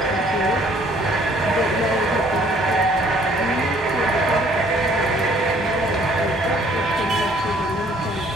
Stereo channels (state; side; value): normal; both; correlation 0.60